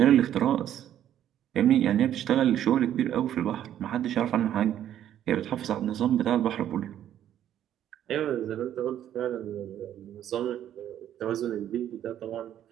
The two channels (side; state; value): left; quieter; 11.0 dB